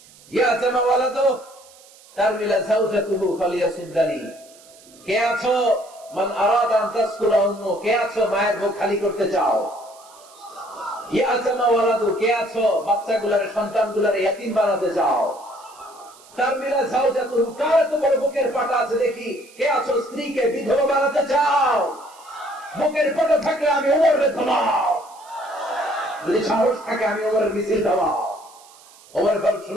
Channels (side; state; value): right; noise; hiss, 24 dB below the sound